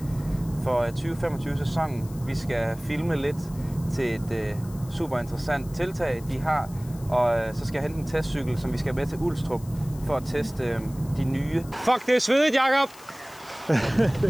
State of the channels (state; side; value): noise; left; hiss, 21 dB below the sound